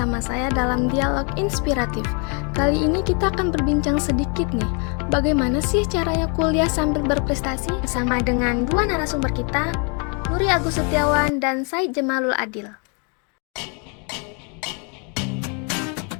saya dalam dialog inspiratif. Kali ini kita akan berbincang sedikit nih, bagaimana sih caranya kuliah sambil berprestasi bersama dengan dua narasumber kita, Nuri Agus Setiawan dan Said Jamalul Adil.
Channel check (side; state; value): right; quieter; 36.2 dB